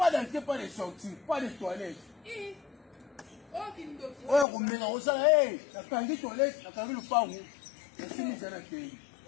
d'entrée, pas de sortie, pas de toilettes. Ouais, on met dans ça, hey, la canne toilette, la canne le pan. Et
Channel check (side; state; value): right; drops out; at 4.5 s